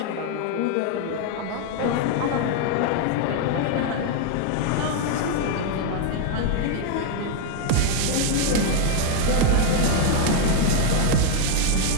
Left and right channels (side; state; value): both; different; correlation 0.00